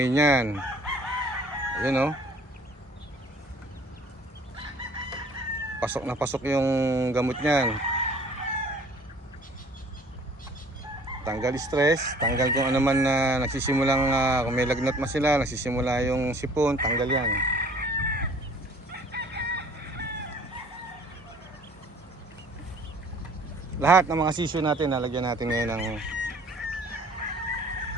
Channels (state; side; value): normal; both; correlation 0.53